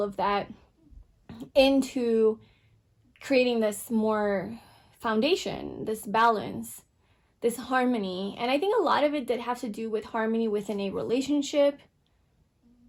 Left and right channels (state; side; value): identical; both; correlation 1.00